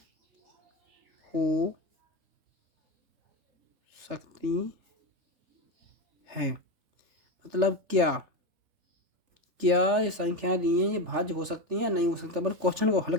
हो सकती है मतलब क्या ये संख्याएं दी हैं ये भाज्य हो सकती हैं या नहीं हो सकता। पर क्वेश्चन को हल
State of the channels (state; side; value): late; left; 3.4 ms